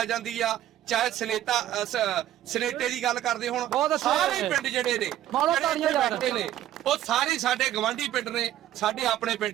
ਜਾਂਦੀ ਆ। ਚਾਹੇ ਸਨੇਟੇ ਦੀ ਗੱਲ ਕਰਦੇ ਹੁਣ, ਸਾਰੇ ਪਿੰਡ ਜਿਹੜੇ ਨੇ ਬੈਠੇ ਨੇ ਉਹ ਸਾਰੇ ਸਾਡੇ ਗਵਾਂਢੀ ਪਿੰਡ ਨੇ, ਸਾਡੇ ਆਪਣੇ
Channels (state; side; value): quieter; left; 12.7 dB